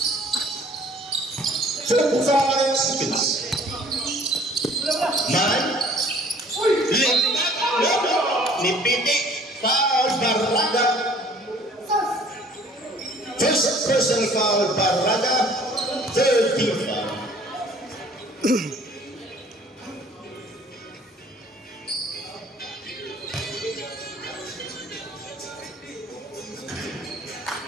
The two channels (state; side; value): normal; both; correlation 0.54